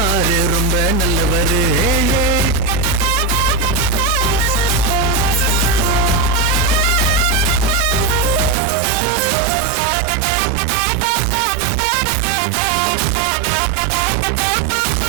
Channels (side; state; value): left; drops out; at 8.6 s